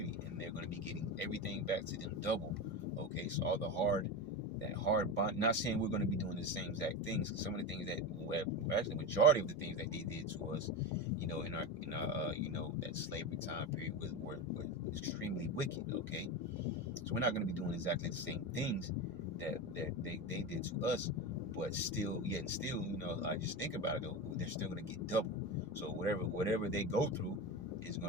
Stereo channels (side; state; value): both; normal; correlation 0.20